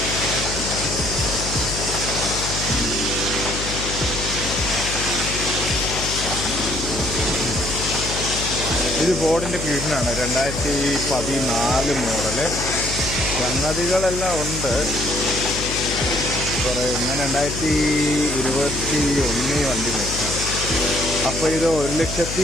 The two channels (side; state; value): left; noise; hum, 6 dB below the sound